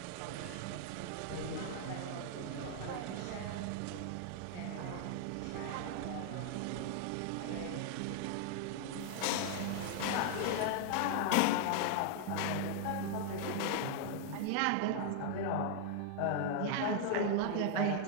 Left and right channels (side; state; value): both; different; correlation 0.00